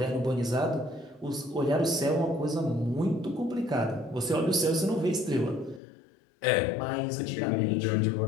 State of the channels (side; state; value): right; drops out; at 5.8 s